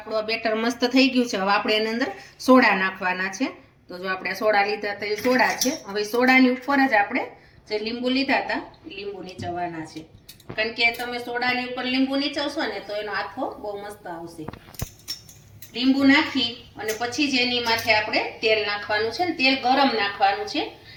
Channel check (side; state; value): both; identical; correlation 1.00